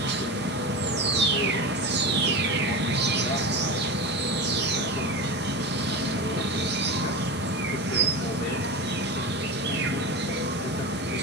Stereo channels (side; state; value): both; normal; correlation 0.24